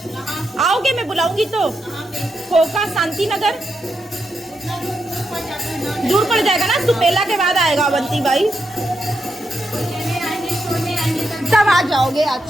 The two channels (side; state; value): both; normal; correlation 0.84